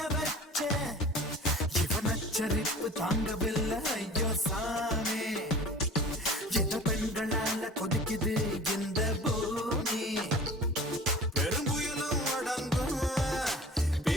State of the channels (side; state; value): both; normal; correlation 0.42